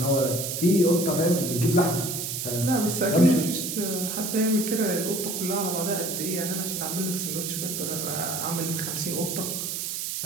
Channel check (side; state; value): right; noise; hiss, 3 dB below the sound